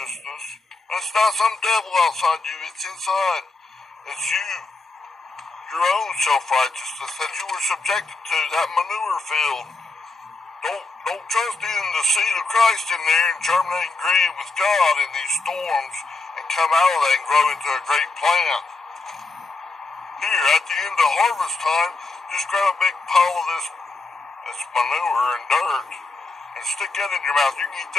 And it's not some devil outside you, it's inside. It's you. Your own self-righteousness that you were subjected to, that manure field. Don't trust in the seed of Christ in there and germinate and grieve with God in these storms and come out of that and grow into a great plant. Here, at the end of harvest time, just grab a big pile of this manure and dirt and stick that in your mouth. You can eat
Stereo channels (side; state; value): right; quieter; 3.6 dB